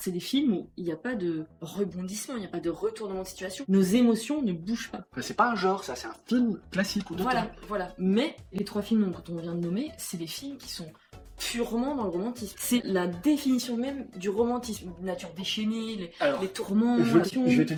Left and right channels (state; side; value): identical; both; correlation 1.00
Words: des films où il n'y a pas de rebondissement, il n'y a pas de retournement de situation. Nos émotions ne bougent pas. Enfin, c'est pas un genre, ça, c'est un film classique ou d'auteur. Voilà. Mais les trois films dont on vient de nommer, c'est des films qui sont purement dans le romantisme. C'est la définition même du romantisme. Nature déchaînée, Alors, les tourments, je passion. vais te